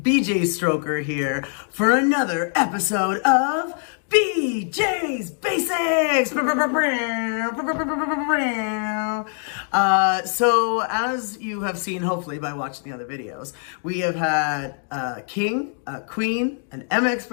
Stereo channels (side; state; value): right; silent; 55 dB below the other